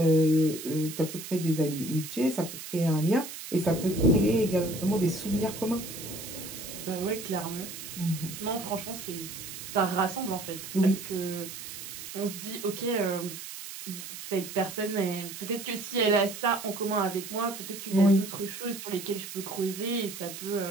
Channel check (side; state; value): right; noise; hiss, 10 dB below the sound